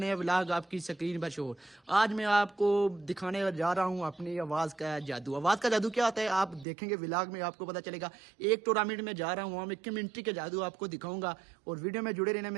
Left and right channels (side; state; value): left; drops out; at 6.7 s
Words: व्लॉग आपकी स्क्रीन पर शो। आज मैं आपको दिखाने जा रहा हूँ अपनी आवाज़ का जादू। आवाज़ का जादू क्या होता है आप देखेंगे व्लॉग में, आपको पता चलेगा। एक टूर्नामेंट में जा रहा हूँ, वहाँ में कम्युनिटी के जादू आपको दिखाऊंगा और वीडियो में जुड़े रहना